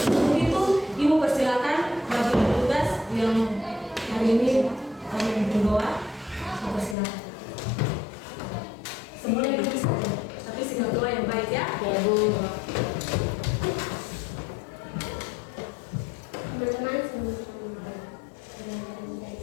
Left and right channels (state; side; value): drops out; right; at 7.0 s